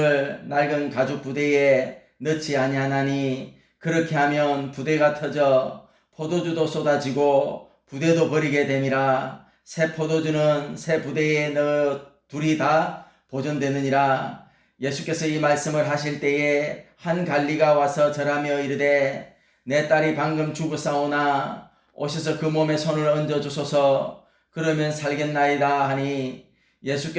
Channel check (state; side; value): identical; both; correlation 1.00